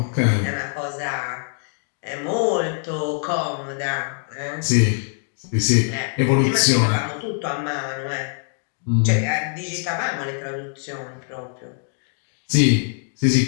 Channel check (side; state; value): right; silent; 59 dB below the other